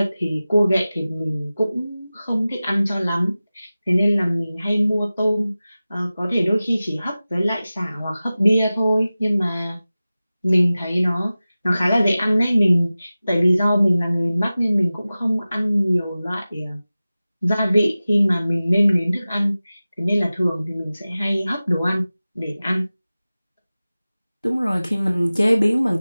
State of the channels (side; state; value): both; inverted; correlation -0.97